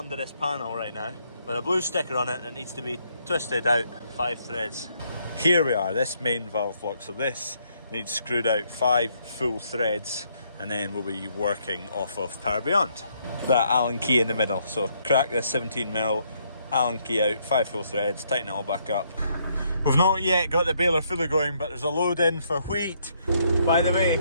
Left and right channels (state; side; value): inverted; both; correlation -0.72